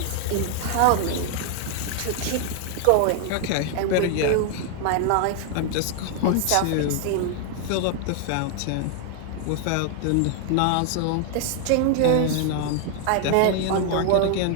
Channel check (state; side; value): different; both; correlation 0.00